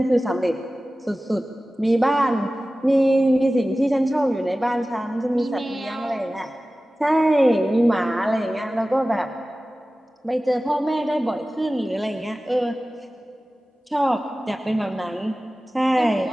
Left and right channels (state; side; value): normal; both; correlation 0.96